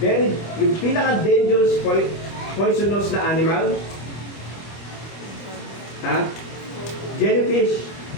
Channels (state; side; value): late; right; 25 ms